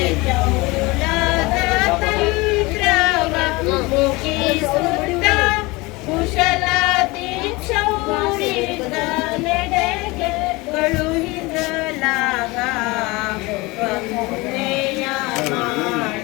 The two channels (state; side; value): quieter; right; 23.5 dB